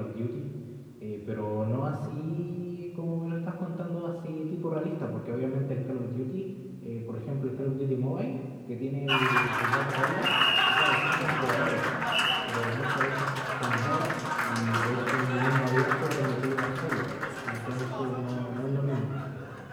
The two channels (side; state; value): both; identical; correlation 1.00